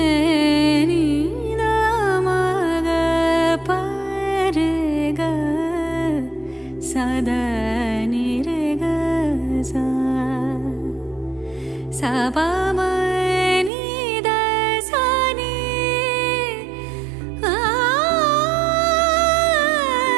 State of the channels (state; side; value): drops out; left; at 13.7 s